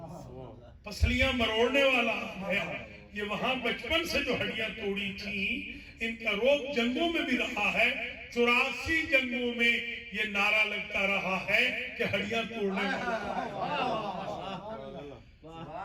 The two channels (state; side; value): identical; both; correlation 1.00